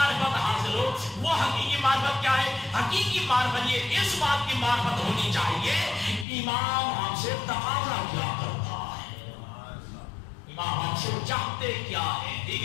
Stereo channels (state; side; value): drops out; right; at 6.2 s